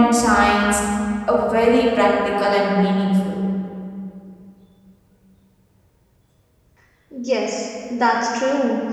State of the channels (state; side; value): identical; both; correlation 1.00